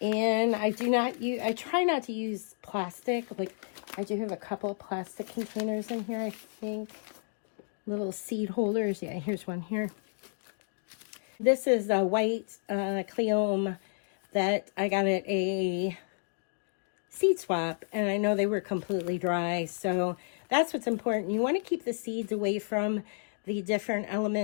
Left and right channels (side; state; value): right; silent; digital silence